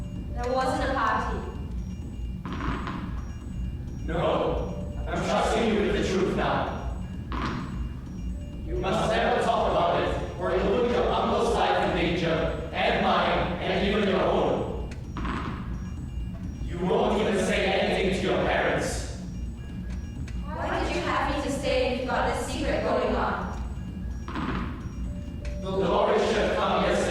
There wasn't a party. No, I'm trusting you with the truth now. You must never talk about it, or you'll put your uncle's life in danger, and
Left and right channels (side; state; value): both; identical; correlation 1.00